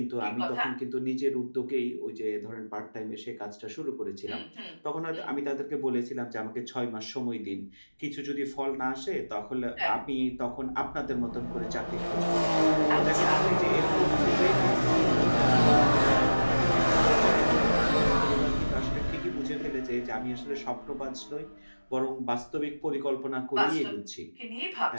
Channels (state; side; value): inverted; both; correlation -1.00